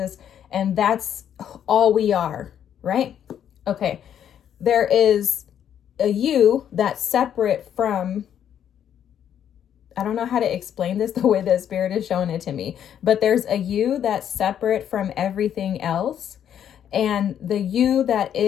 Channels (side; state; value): right; quieter; 9.5 dB